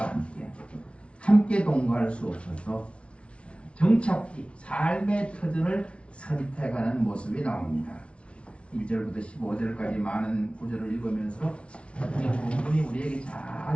함께 동거할 수 없어서 정착지, 삶의 터전을 선택하는 모습이 나옵니다. 1절부터 15절까지 많은 구절을 읽으면서 이 본문이 우리에게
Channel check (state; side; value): late; right; 0.060 ms